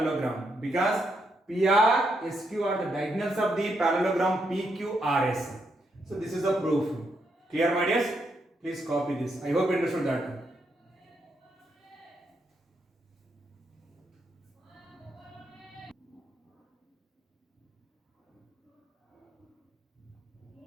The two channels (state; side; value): normal; both; correlation 0.79